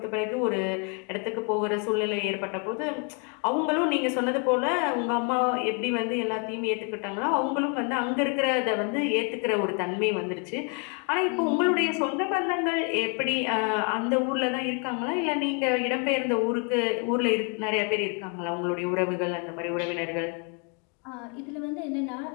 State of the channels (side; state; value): right; quieter; 35.9 dB